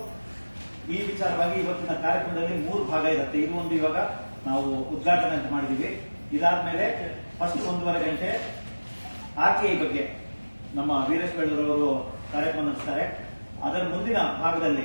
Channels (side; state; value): both; inverted; correlation -1.00